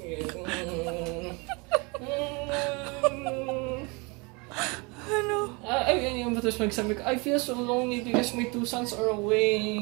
Ano? Tapos magsabi ko, I feel so lonely because my 2 sons are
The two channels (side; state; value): left; quieter; 28.7 dB